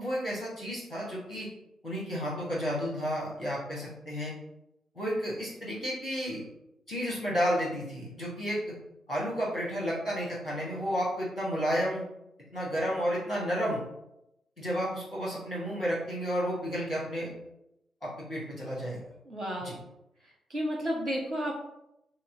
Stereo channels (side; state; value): both; normal; correlation 0.78